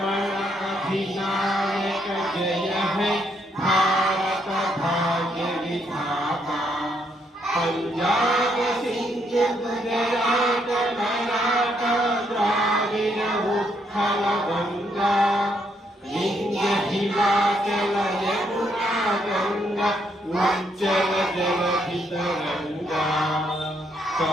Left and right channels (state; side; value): normal; both; correlation 0.74